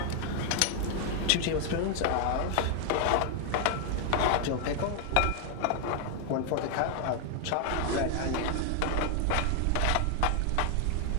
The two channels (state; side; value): different; both; correlation 0.00